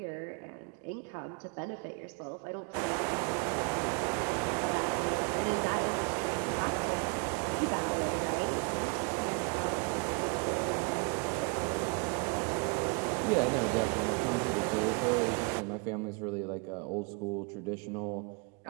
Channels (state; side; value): quieter; left; 34.6 dB